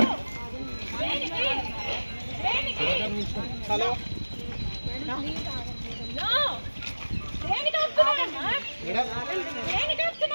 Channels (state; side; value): inverted; both; correlation -1.00